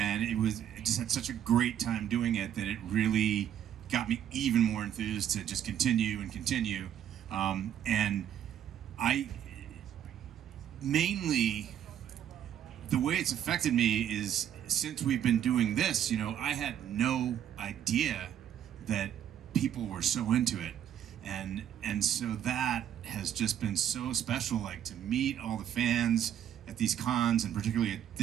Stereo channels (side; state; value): left; quieter; 10.0 dB